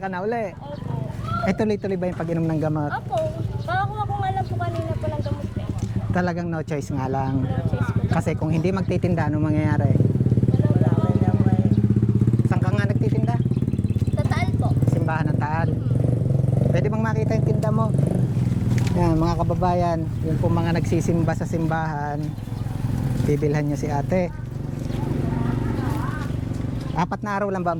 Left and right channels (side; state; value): both; identical; correlation 1.00